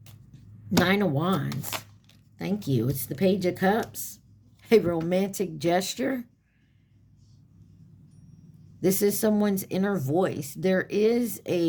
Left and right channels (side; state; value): both; identical; correlation 1.00